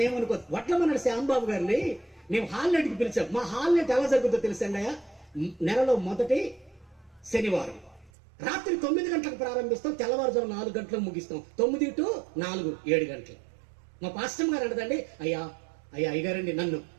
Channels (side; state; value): left; drops out; at 8.1 s